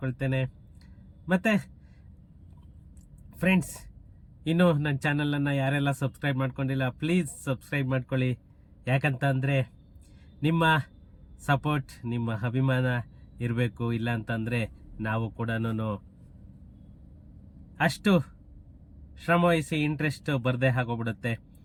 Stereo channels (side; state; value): both; identical; correlation 1.00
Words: ಮತ್ತು ಫ್ರೆಂಡ್ಸ್, ಇನ್ನೂ ನನ್ನ ಚಾನಲನ್ನು ಯಾರೆಲ್ಲ ಸಬ್ಸ್ಕ್ರೈಬ್ ಮಾಡ್ಕೊಂಡಿಲ್ಲ, ಪ್ಲೀಸ್ ಸಬ್ಸ್ಕ್ರೈಬ್ ಮಾಡ್ಕೊಳ್ಳಿ. ಯಾಕಂತ ಅಂದರೆ ನಿಮ್ಮ ಸಪೋರ್ಟ್, ನಿಮ್ಮ ಅಭಿಮಾನ ಇರಬೇಕು. ಇಲ್ಲ ಅಂತಂದರೆ ನಾವು ಕೂಡ ಅಷ್ಟು ಶ್ರಮವಹಿಸಿ ಇಂಟ್ರೆಸ್ಟ್ ಬರದೇ ಆಗೋಗ್ಬಿಡುತ್ತೆ.